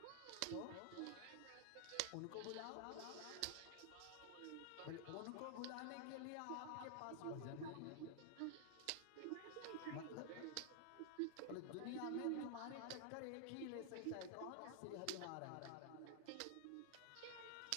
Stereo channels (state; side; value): different; both; correlation 0.00